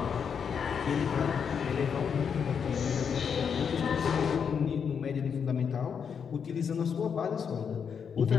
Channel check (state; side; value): quieter; right; 6.9 dB